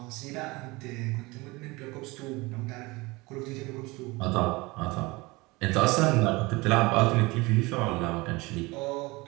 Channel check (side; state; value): left; quieter; 23.3 dB